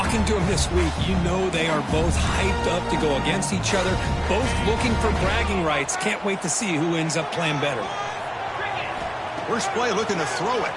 to them this week, you know they are both hyped up to go against each other, both looking for bragging rights. Can't wait to see who ends up playing better. First play looking to throw it.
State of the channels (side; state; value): both; identical; correlation 1.00